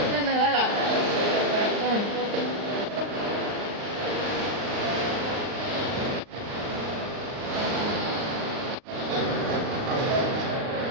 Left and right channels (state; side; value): late; left; 38 ms